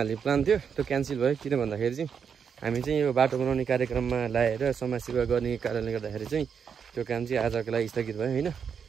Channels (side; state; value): left; quieter; 6.9 dB